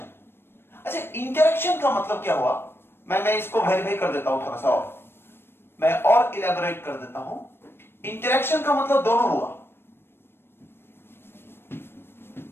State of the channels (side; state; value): right; late; 0.11 ms